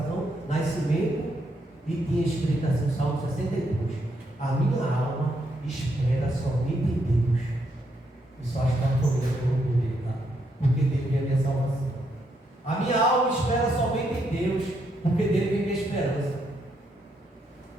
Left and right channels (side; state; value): both; normal; correlation 0.77